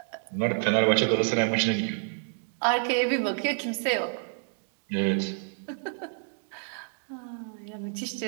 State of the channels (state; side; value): silent; left; digital silence